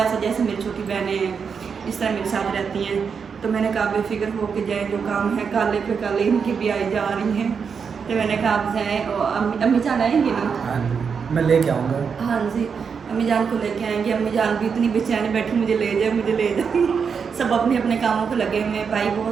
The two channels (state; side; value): quieter; left; 6.2 dB